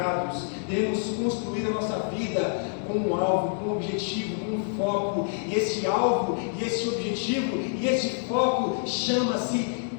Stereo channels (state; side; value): silent; right; 60 dB below the other